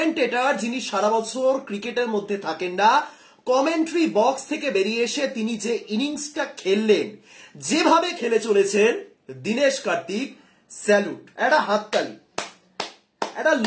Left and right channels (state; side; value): identical; both; correlation 1.00